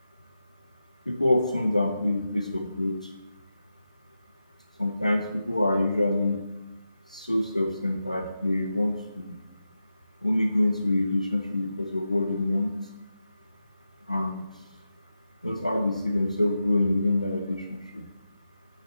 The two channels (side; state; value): both; inverted; correlation -0.89